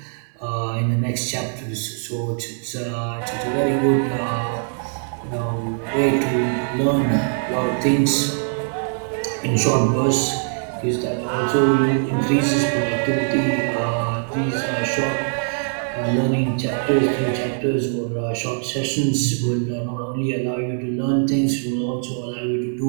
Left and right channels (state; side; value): silent; left; 63 dB below the other